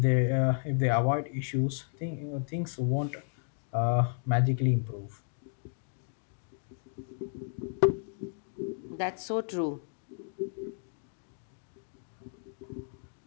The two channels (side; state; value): right; silent; digital silence